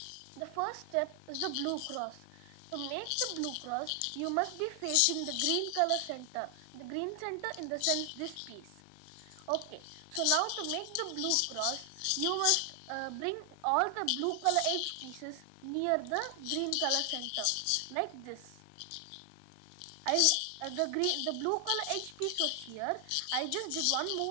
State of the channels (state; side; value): different; both; correlation 0.00